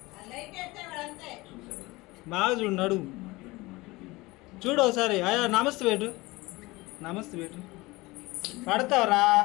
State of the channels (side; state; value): right; quieter; 21.8 dB